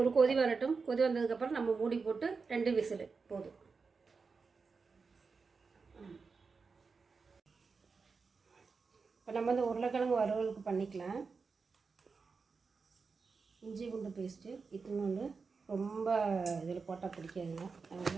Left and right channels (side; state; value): left; quieter; 4.8 dB